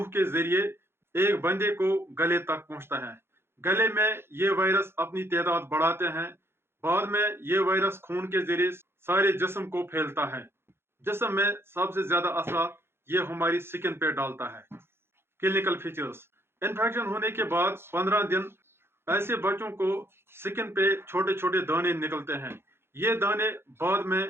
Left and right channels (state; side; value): late; left; 0.11 ms